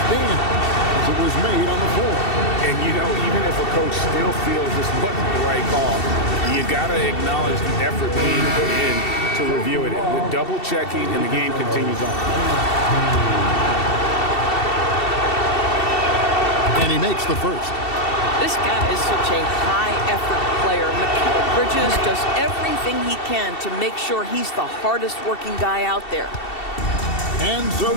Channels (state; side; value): late; right; 2.7 ms